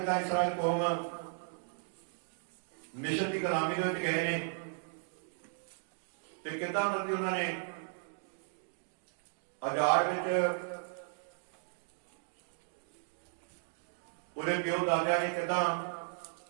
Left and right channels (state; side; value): silent; left; digital silence